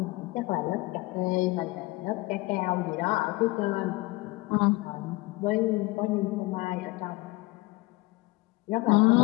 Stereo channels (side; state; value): right; quieter; 21.6 dB